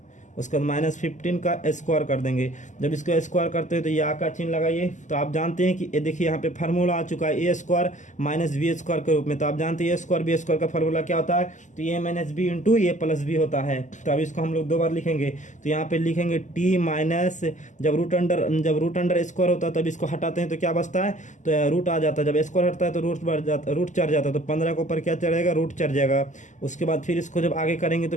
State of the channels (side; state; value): right; late; 0.36 ms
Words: उसके बाद -15 का स्क्वायर कर देंगे। जब इसको स्क्वायर करते हैं तो या का चिन्ह लगाइए। तो आप जानते हैं कि ये देखिए यहाँ पे फार्मूला आ चुका है a² -b² के रूप में। तो आप जानते हैं a² b² का फार्मूला क्या होता है, तो a - b इंटू a+b होता है। तो अब इसको हम लोग 2 बार लिखेंगे। तो यहाँ पे लिखेंगे t माइनस, जब रूट अंडर स्क्वायर होता है तब इसको हटाते हैं तो क्या बचता है, तो रूट आ जाता है। जब स्क्वायर हटता है तो रूट चढ़ जाता है। तो 15 के ऊपर क्या चढ़ेगा, रूट चढ़ जाएगा। उसके बाद फिर इसको जब आगे करेंगे